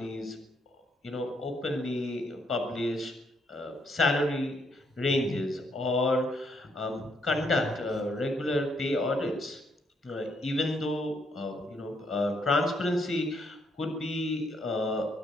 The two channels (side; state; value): both; normal; correlation 0.73